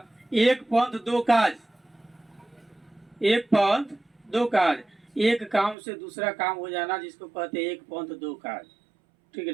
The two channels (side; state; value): left; drops out; at 5.8 s